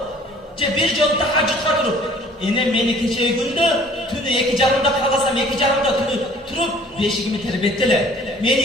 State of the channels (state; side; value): normal; both; correlation 0.53